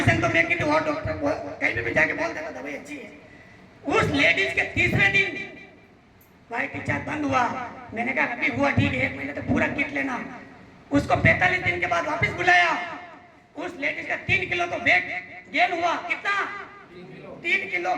तो मैं किसी और डॉक्टर को कहीं भी जाके बोल देता दवाई अच्छी है। उस लेडीज के तीसरे दिन व्हाइट डिस्चार्ज बंद हुआ। मैंने कहा अभी हुआ ठीक है, 1 महीने तक पूरा किट लेना। उसको 45 दिन के बाद वापस बुलाया। उस लेडीज का 3 किलो तो वेट गेन हुआ। कितना? 3 किलो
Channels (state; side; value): identical; both; correlation 1.00